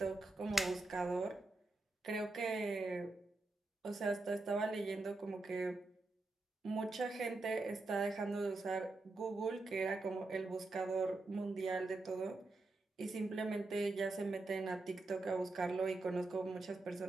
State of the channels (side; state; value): left; quieter; 3.1 dB